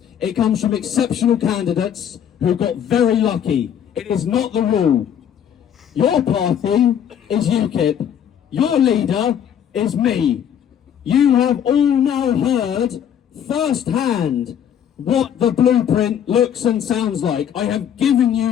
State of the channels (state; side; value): quieter; right; 9.1 dB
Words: It comes from exceptional candidates who got very lucky. It is not the rule. Your party is UKIP. Your leader is me. You have all now heard firsthand what the blueprint looks and sounds like. I have given